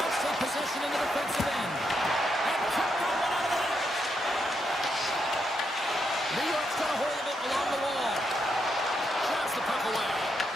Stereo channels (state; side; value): normal; both; correlation 0.81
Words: take possession in the defensive end. And cut that one out of the net. New York's got a hold of it along the wall. Shots the puck away.